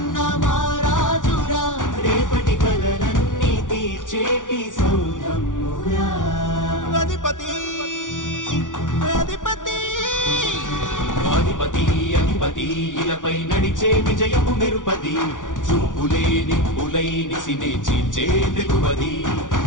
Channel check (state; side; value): late; right; 0.88 ms